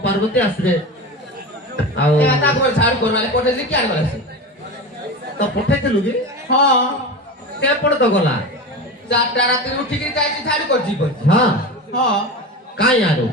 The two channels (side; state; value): both; normal; correlation 0.26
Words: পার্বতী আসবে ଆଉ এ তারপর ঝাড়ু করবালে পটেছি কি আর বলেছে ତ ପଠେଇଥିଲୁ କି হ্যাঁ କେପଟେ ତ ଗଲା 4টা রাতে উঠিকি যাইছি ঝাড়ু করছি বলছি ହଁ হ্যাঁ କାଇଁ ଆରୁ